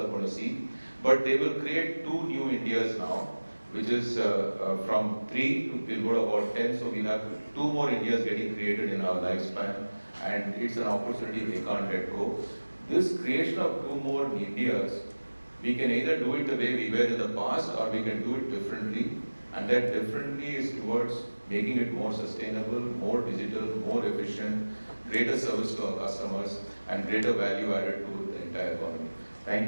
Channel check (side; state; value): both; inverted; correlation -1.00